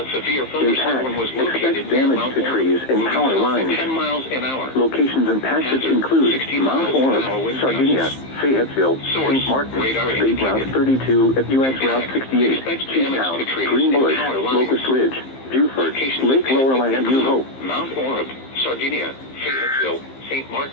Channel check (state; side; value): late; right; 15 ms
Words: severe thunderstorm was Impact, located expect near damage Mount to Orab, trees and moving power south lines. at 10 miles an hour. Locations and patches Hazard, include 60 Mount miles an Orab, hour wind Sardinia, gusts. Fayetteville, Source, St. Martin, radar State Route indicated. 32 at U.S. Route 68, Expect damage Cheetown, to trees Green and Bush, power lines. Locust Ridge, Buford, Locations Lake and Lorelei patches and New Hope. include Mount Orab, Sardinia, Fayetteville, St.